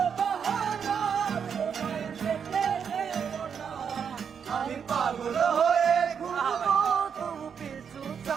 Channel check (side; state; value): left; quieter; 7.1 dB